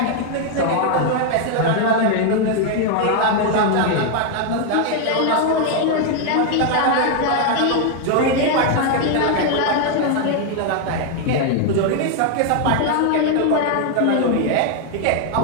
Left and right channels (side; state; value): both; different; correlation 0.00